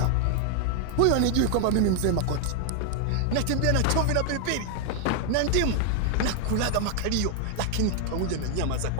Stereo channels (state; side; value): different; both; correlation 0.00